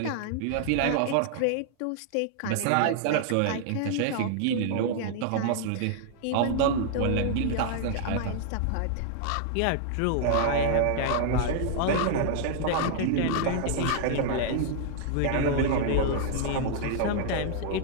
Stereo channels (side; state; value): both; different; correlation -0.01